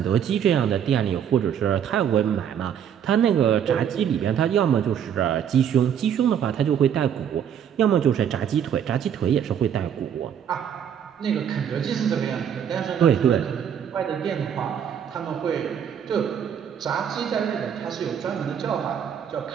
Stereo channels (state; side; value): quieter; left; 8.7 dB